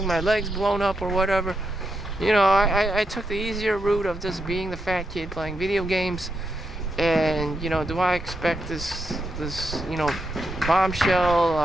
my legs blown up or whatever, I took the easier route of just being the fat kid playing video games. And do I expect this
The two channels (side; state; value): both; normal; correlation 0.83